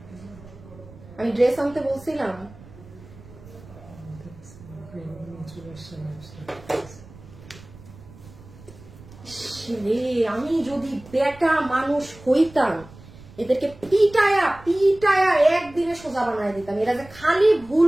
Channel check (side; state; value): right; noise; rumble, 20 dB below the sound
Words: আমি ড্রেস আনতে বলছিলাম। আমি যদি বেটা মানুষ হইতাম, এদেরকে পিটায়া পিটায়া একদিনে সোজা বানায় দিতাম। এরা যে খালি